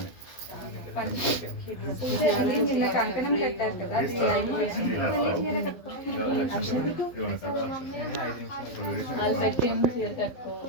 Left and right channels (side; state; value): right; late; 12 ms